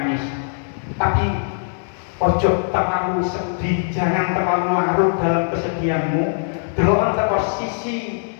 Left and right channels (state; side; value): silent; right; digital silence